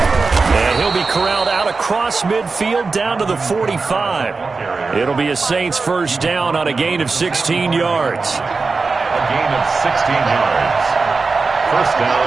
And he'll be corralled out across midfield down to the 45. It'll be a Saints first down on a gain of 16 yards. A gain of 16 yards. First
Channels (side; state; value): left; quieter; 4.2 dB